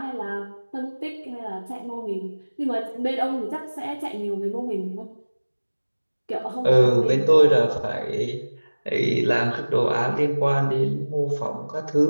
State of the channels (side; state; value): both; inverted; correlation -1.00